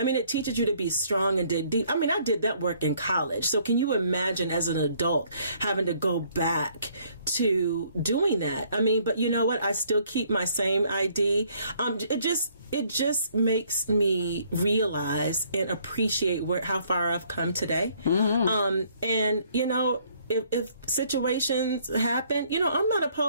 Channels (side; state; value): both; inverted; correlation -0.64